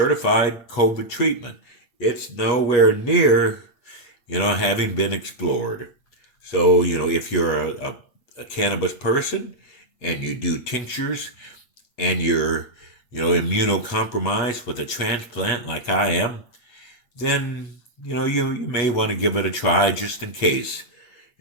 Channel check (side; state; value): right; late; 8.6 ms